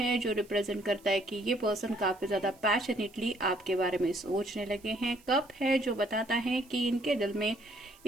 जो रिप्रेजेंट करता है कि ये पर्सन काफी ज्यादा पैशनेटली आपके बारे में सोचने लगे हैं। कप है जो बताता है कि इनके दिल में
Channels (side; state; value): right; noise; hiss, 27 dB below the sound